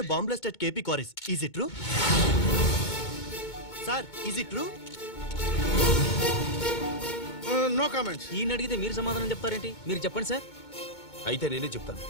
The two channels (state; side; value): late; right; 2.2 ms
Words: a bomb blast at KP Quarries. Is it true? Sir, is it true? No comments. ఈయన అడిగితే మీరు సమాధానం చెప్తారేంటి? మీరు చెప్పండి సార్. అయితే నేనే చెప్తాను.